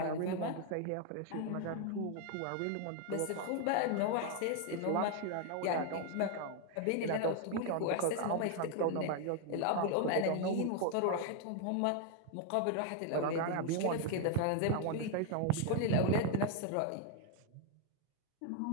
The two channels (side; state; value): both; different; correlation 0.00